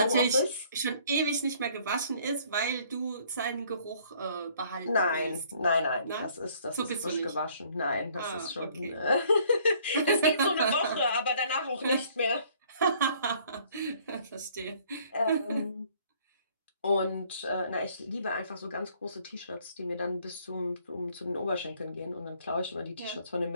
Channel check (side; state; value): both; inverted; correlation -0.60